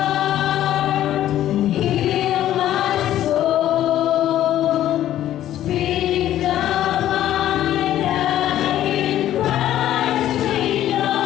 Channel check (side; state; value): right; quieter; 12.5 dB